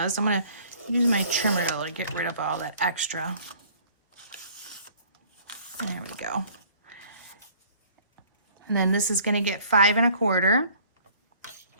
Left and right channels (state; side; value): inverted; both; correlation -0.54